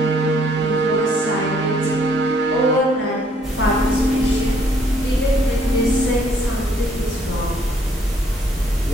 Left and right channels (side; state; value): both; normal; correlation 0.65